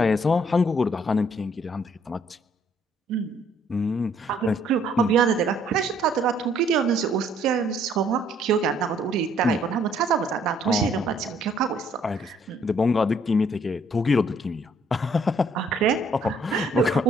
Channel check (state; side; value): normal; both; correlation 0.64